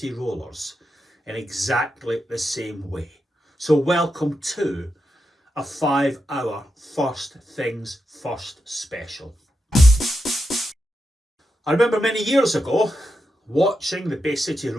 Rollers in exactly the same way. So welcome to a 5-hour First Things First special. I remember many years ago watching the Bay City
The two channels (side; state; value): both; normal; correlation 0.86